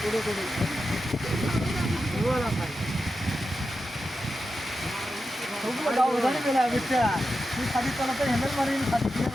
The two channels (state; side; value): normal; both; correlation 0.90